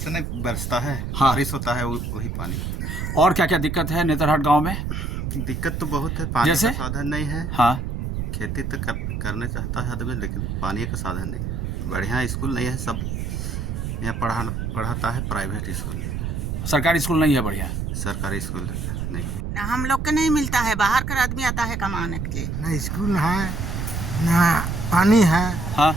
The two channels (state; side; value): noise; right; rumble, 3 dB below the sound